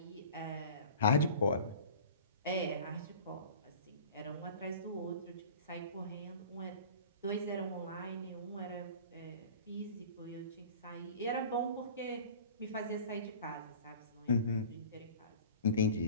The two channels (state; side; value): inverted; both; correlation -0.42